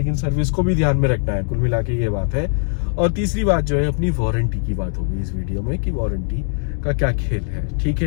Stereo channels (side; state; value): right; silent; digital silence